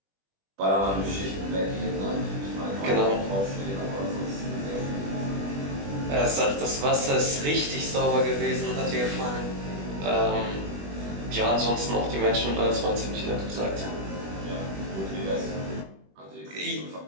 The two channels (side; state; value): left; late; 21 ms